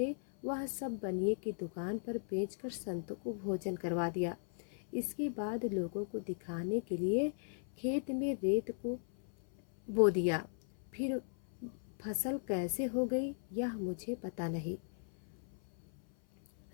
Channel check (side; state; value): right; silent; 53 dB below the other